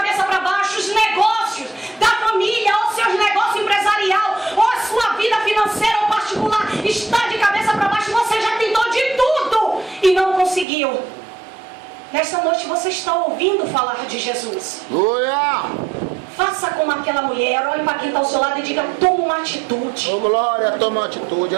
para baixo, os negócios da família, ou seus negócios empresarial, ou a sua vida financeira ou particular está de cabeça para baixo. Você já tentou de tudo e não conseguiu. Nesta noite você está ouvindo falar de Jesus. Glória! Faça como aquela mulher, olhe para quem está ao seu lado e diga: toma uma atitude. Oh, glória, toma uma atitude,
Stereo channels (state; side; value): drops out; left; at 10.7 s